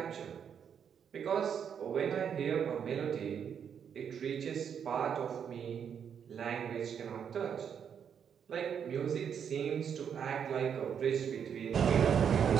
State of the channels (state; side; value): quieter; left; 7.8 dB